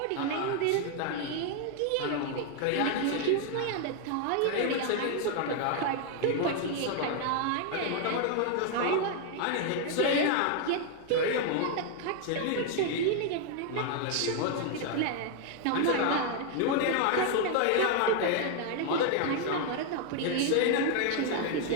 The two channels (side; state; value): both; different; correlation 0.00